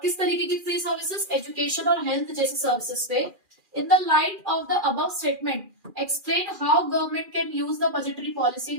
किस तरीके की फ्री सर्विसेज? एजुकेशन और हेल्थ जैसी सर्विसेज पे। In the light of the above statement explain how government can use the budgetary policy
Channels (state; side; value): late; left; 2.4 ms